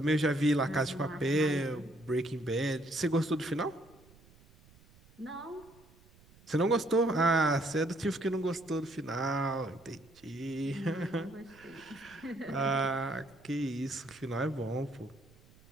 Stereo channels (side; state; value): right; noise; rumble, 27 dB below the sound